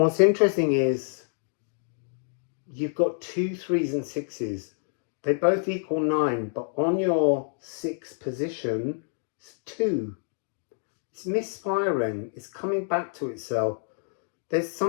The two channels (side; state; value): right; silent; digital silence